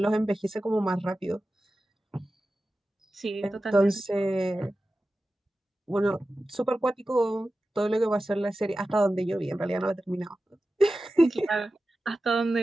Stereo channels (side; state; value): both; normal; correlation 0.94